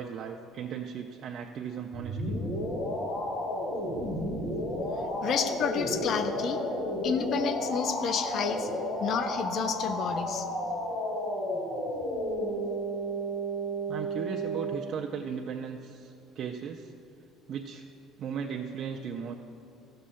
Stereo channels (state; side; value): normal; both; correlation 0.47